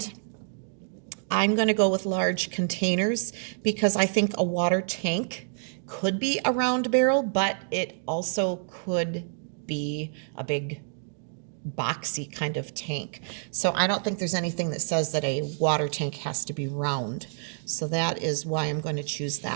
I'm going to go with large containers because I think a water tank could be a round barrel, but it also could be a big boxy kind of tank. So I don't think there's anything that says that a water tank has to be round. So that is why I'm going to choose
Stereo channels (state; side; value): silent; left; digital silence